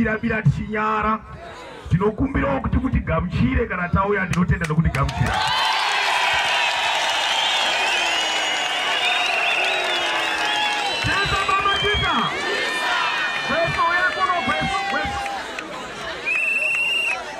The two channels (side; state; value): both; identical; correlation 1.00